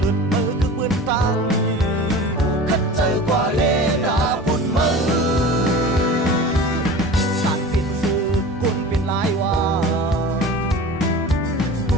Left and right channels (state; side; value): normal; both; correlation 0.36